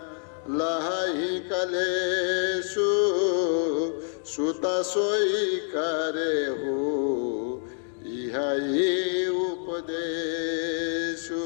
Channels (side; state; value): right; silent; 56 dB below the other